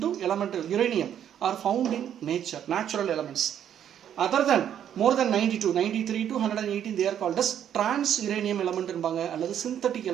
to element uranium, are found in nature, natural elements. Other than more than 92, 93 to 118, they are called as trans-uranium element or synthetic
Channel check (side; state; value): left; quieter; 9.7 dB